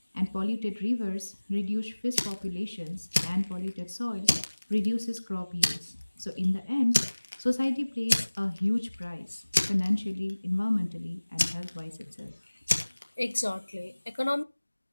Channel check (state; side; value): inverted; both; correlation -1.00